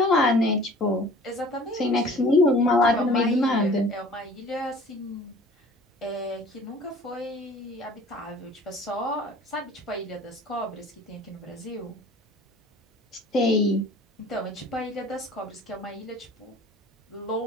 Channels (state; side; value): normal; both; correlation 0.48